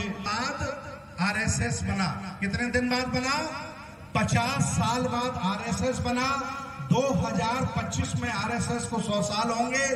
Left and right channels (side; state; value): both; identical; correlation 1.00